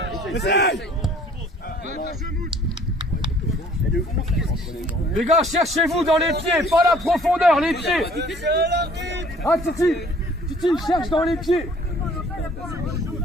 Essaye. Les gars, cherchez-vous dans les pieds, pas la profondeur, les pieds. Ah, Titi, cherche dans les pieds.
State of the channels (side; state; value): both; normal; correlation 0.55